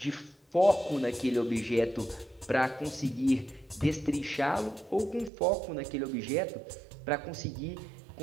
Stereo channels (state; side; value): drops out; left; at 5.3 s